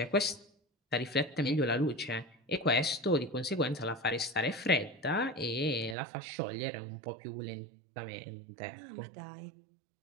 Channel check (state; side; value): drops out; left; at 6.0 s